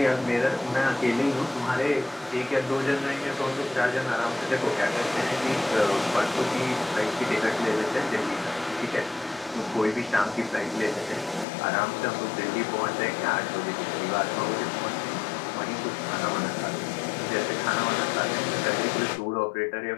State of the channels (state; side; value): drops out; right; at 11.5 s